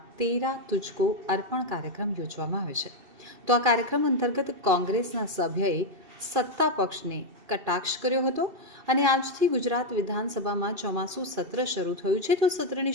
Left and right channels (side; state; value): left; late; 2.7 ms